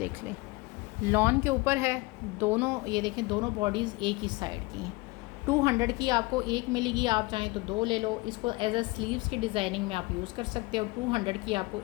लें, लॉन के ऊपर है दोनों। ये देखें, दोनों बॉडीज़ एक ही साइड की हैं। 200 की आपको एक मिलेगी, आप चाहें तो 2 ले लो। इसको एज अ स्लीव्स की डिज़ाइनिंग में आप यूज़ कर सकते हो। 200 की आपको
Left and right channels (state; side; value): quieter; right; 23.6 dB